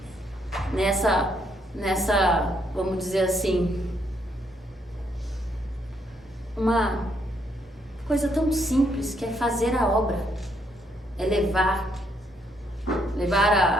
nessa, vamos dizer assim, uma coisa tão simples que é fazer a obra, é levar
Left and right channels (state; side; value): normal; both; correlation 0.73